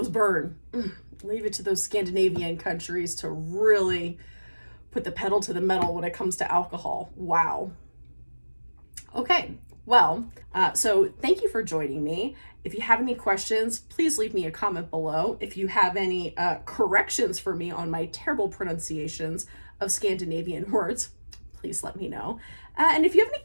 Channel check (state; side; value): inverted; both; correlation -1.00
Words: burn. Leave it to those Scandinavian countries to really put the pedal to the metal when it comes to alcohol. Wow. Okay, well, so thank you for joining me. If you have any questions, please leave me a comment below. If you have any corrections for me on my terrible pronunciations of Scandinavian words, please let me know. And if you have any